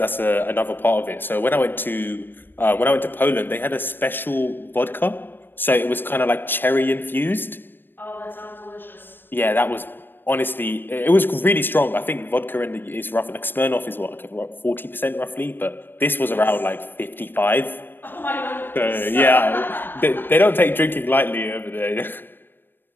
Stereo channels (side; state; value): right; late; 0.096 ms